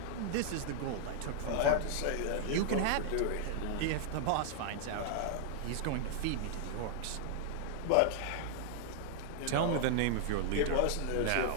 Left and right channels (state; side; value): different; both; correlation -0.01